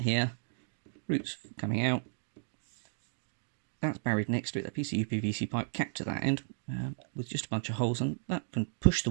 here, roots coming out, that's buried next to it, that piece of UPVC pipe capped to that end with just a bunch of holes, and that can push the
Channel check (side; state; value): left; silent; digital silence